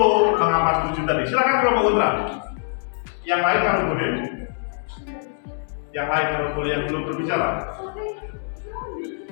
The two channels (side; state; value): right; silent; 63 dB below the other